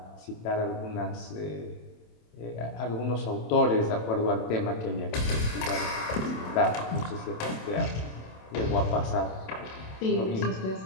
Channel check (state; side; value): late; right; 27 ms